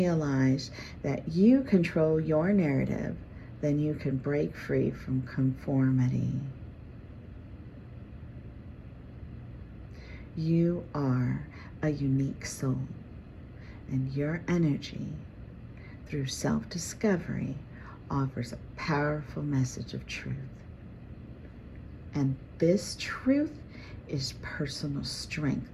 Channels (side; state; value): both; identical; correlation 1.00